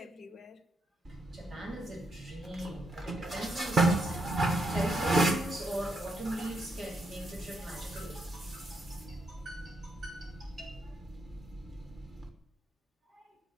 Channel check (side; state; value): both; normal; correlation 0.79